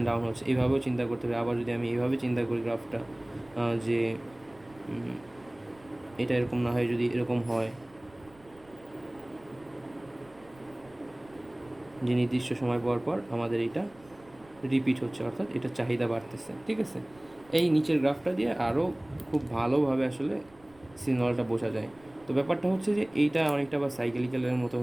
ডাউন হচ্ছে, এইভাবেও চিন্তা করতে হবে। আবার যদি আমি এইভাবে চিন্তা করি গ্রাফটা, যে এটা এরকম না হয়, যদি এরকম হয় যে নির্দিষ্ট সময় পর পর আমাদের এটা রিপিট হচ্ছে, অর্থাৎ এটা চাহিদা বাড়তেছে, ঠিক আছে। এই নিচের গ্রাফটা দিয়ে আরও খুব ভালোভাবে আসলে সিগন্যালটা বোঝা যায়। তো ব্যাপারটা হচ্ছে যে এইটা অনেকটা বা সাইকেলিক্যালের মতো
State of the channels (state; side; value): noise; right; rumble, 27 dB below the sound